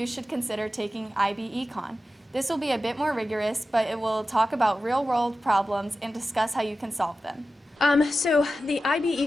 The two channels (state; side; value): normal; both; correlation 0.93